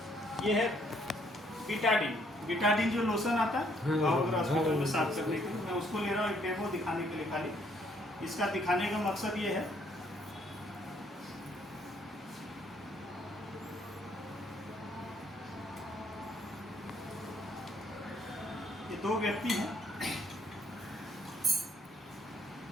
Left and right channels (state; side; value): normal; both; correlation 0.67